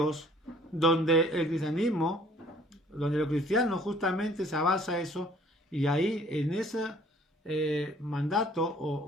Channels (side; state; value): both; normal; correlation 0.57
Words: donde el cristianismo, donde los cristianos justamente se basa eso, y ahí en ese mandato